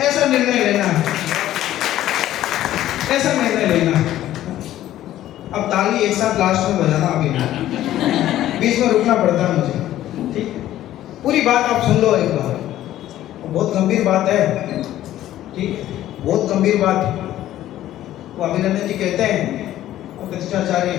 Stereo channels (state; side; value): quieter; right; 13.3 dB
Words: ऐसा निर्णय लेना है, ऐसा निर्णय लेना है। अब ताली एक साथ लास्ट में बजाना, अभी नहीं, बीच में रुकना पड़ता है मुझे। ठीक, पूरी बात आप सुन लो एक बार, बहुत गंभीर बात है। ठीक, बहुत गंभीर बात है। वो अभिनंदन जी कहते हैं, प्रतिष्ठाचार्य